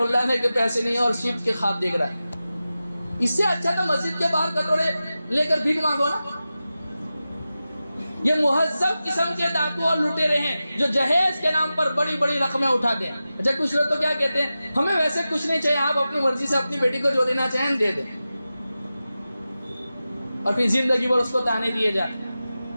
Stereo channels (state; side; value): inverted; both; correlation -0.94